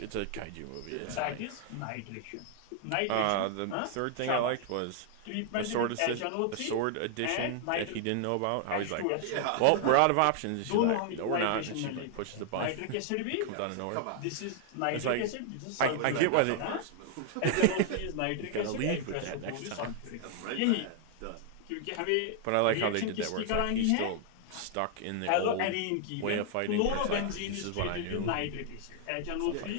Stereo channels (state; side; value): different; both; correlation 0.00